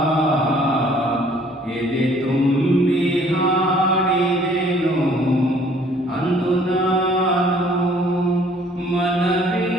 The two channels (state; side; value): normal; both; correlation 0.58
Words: ಎದೆ ತುಂಬಿ ಹಾಡಿದೆ